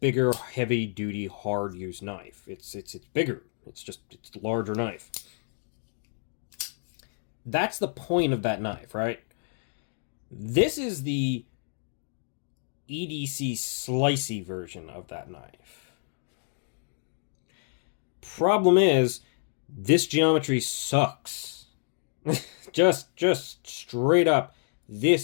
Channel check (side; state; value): right; silent; digital silence